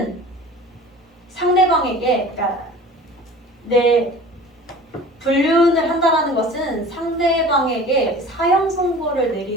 상대방에게, 그러니까 불륜을 한다는 것은 상대방에게 사형 선고를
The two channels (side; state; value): both; normal; correlation 0.42